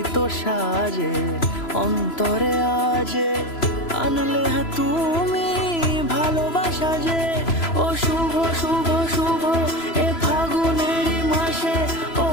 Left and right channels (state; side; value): late; right; 3.0 ms